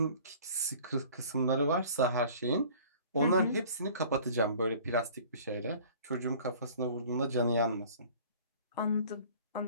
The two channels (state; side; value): inverted; both; correlation -0.48